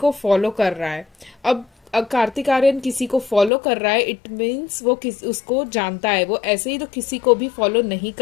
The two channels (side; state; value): right; drops out; at 3.5 s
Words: फॉलो कर रहा है। अब कार्तिक आर्यन किसी को फॉलो कर रहा है, इट मीन्स वो उसको जानता है। वो ऐसे ही तो किसी को भी फॉलो नहीं